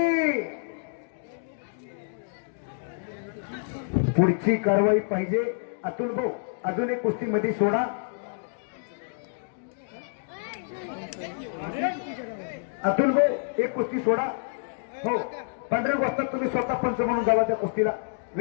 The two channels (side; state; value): right; silent; digital silence